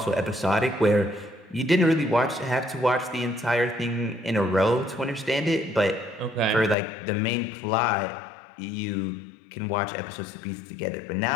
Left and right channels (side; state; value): right; drops out; at 6.8 s